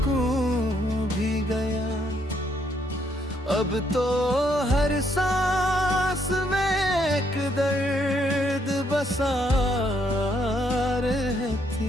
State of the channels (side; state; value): both; normal; correlation 0.72